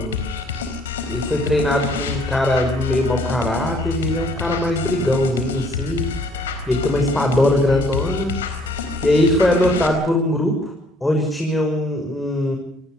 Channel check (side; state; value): both; normal; correlation 0.62